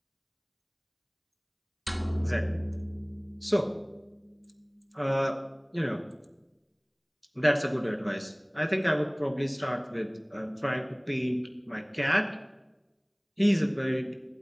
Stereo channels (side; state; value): both; identical; correlation 1.00